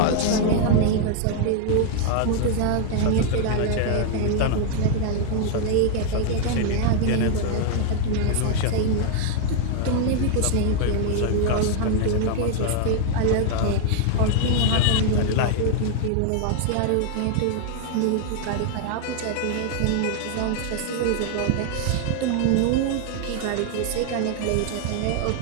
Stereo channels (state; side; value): different; both; correlation 0.00